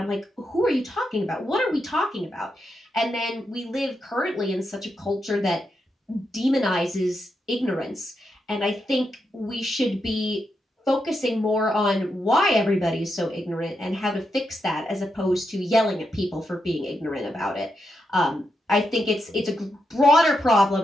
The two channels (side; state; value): both; normal; correlation 0.84